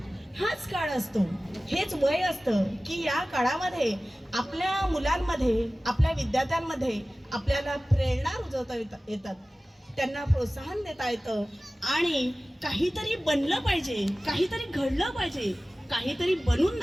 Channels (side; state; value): both; normal; correlation 0.97